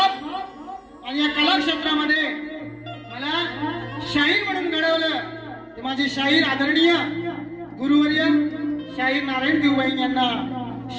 आणि या कला क्षेत्रामध्ये मला शाहीर म्हणून घडवलं ते माझे शाहीर आदरणीय गुरुवर्य शाहीर नारायण देवबाई यांना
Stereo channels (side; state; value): both; identical; correlation 1.00